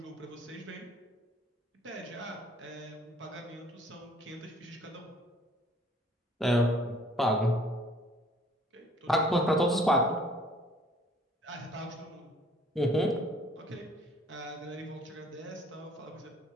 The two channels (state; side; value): normal; both; correlation 0.57